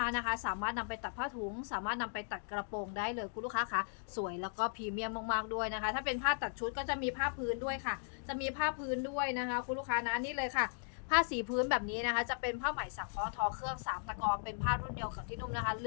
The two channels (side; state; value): right; silent; digital silence